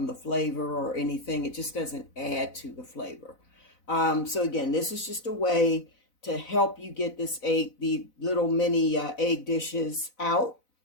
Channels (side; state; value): right; late; 4.0 ms